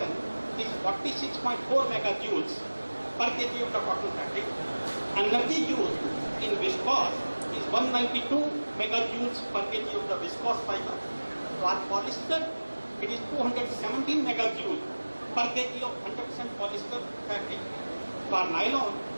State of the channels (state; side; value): inverted; both; correlation -1.00